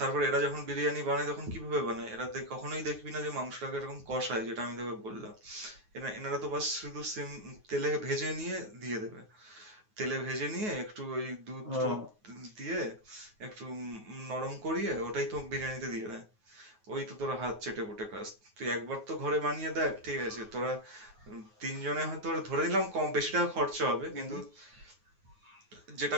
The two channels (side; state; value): left; late; 9.4 ms